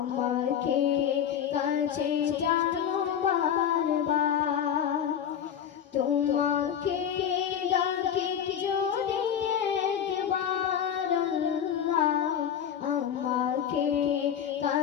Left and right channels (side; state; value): right; quieter; 8.9 dB